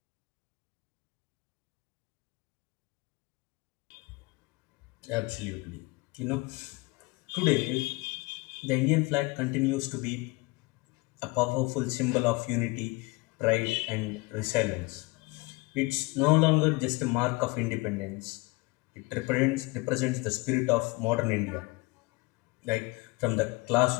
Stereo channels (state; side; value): quieter; right; 25.2 dB